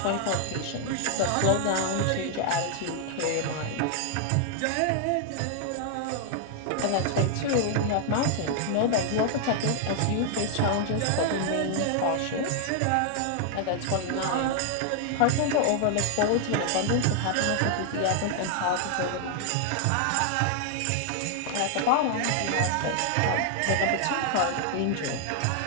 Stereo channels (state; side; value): different; both; correlation 0.00